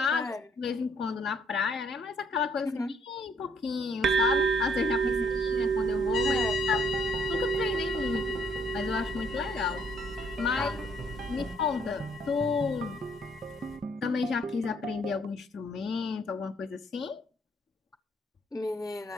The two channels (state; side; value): normal; both; correlation 0.67